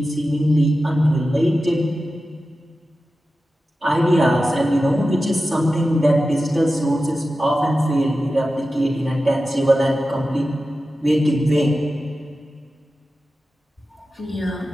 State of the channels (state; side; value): normal; both; correlation 0.93